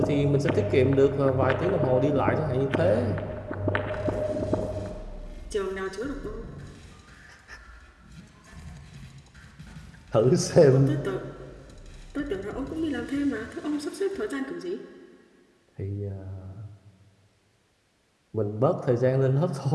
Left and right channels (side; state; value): both; identical; correlation 1.00